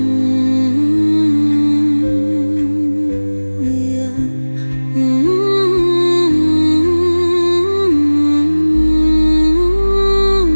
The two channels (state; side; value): inverted; both; correlation -1.00